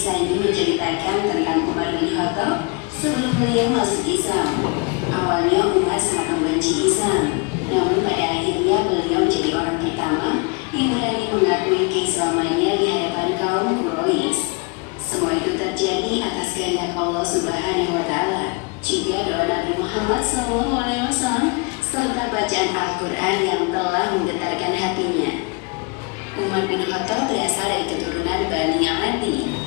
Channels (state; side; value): quieter; right; 30.7 dB